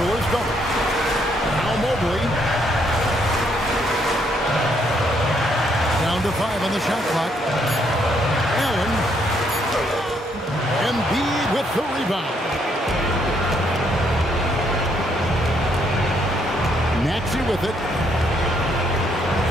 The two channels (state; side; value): normal; both; correlation 0.72